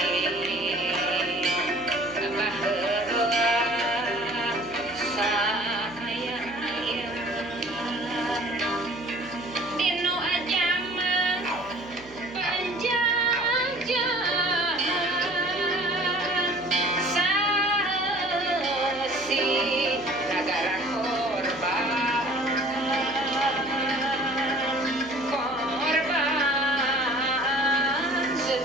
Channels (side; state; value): right; noise; hum, 22 dB below the sound